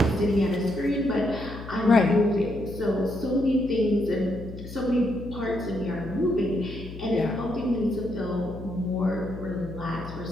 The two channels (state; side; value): noise; left; hum, 12 dB below the sound